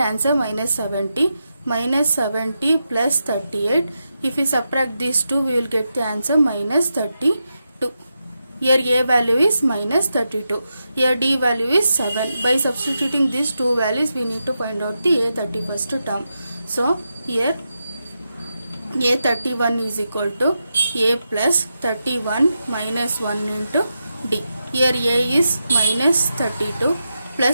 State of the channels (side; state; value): both; inverted; correlation -0.88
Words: minus 70. Minus 70 plus 38. If we subtract these two, we will get the answer minus 32. Here A value is minus 32. Here D value is 7. By substituting these two values, we need to find out the A31st term. So here A31 is equal to A plus 31 minus 1 into D. Here A is minus 32